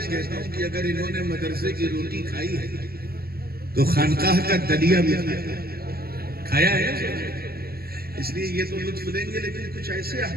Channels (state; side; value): late; left; 0.45 ms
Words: کہتا ہوں کہ اگر انہوں نے مدرسے کی روٹی کھائی ہے تو خانقاہ کا دلیا بھی کھایا ہے۔ اس لیے یہ تو لطف لیں گے، لیکن کچھ ایسے